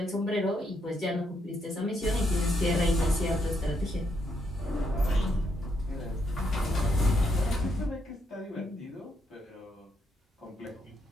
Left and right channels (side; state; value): both; normal; correlation 0.76